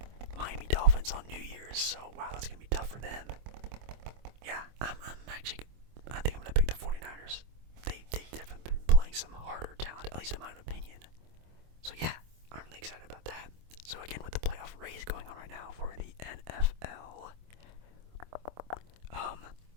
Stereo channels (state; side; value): late; left; 25 ms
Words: Miami Dolphins on New Year's, so wow, that's gonna be tough for them. Yeah, I'm actually, I think I'm gonna pick the 49ers. They've definitely been playing some harder talent, at least in my opinion. So yeah, I'm really excited about that. So again, with the playoff race going on right now for the NFL,